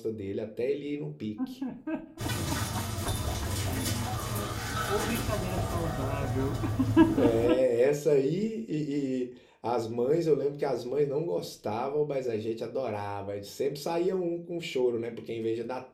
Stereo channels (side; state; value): both; identical; correlation 1.00